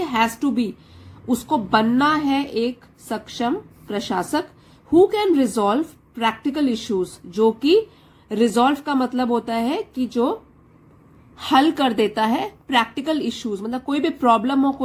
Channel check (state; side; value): identical; both; correlation 1.00